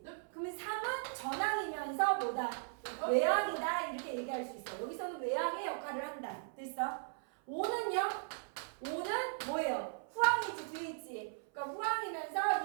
그러면 3은 전항이면서 뭐다? 외항이다. 이렇게 얘기할 수 있어. 여기서는 외항의 역할을 한다. 됐어? 5는요? 5는 뭐예요? 후항이지, 뒤에 있지. 그러니까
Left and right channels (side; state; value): left; silent; 53 dB below the other